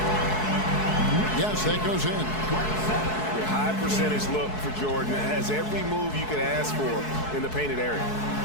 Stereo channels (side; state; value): right; late; 4.7 ms